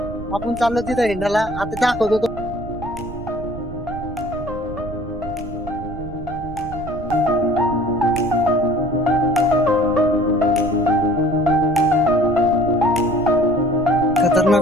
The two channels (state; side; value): noise; right; rumble, 12 dB below the sound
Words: आपण चाललो तिथं हिंडाला. आता दाखवतो तो.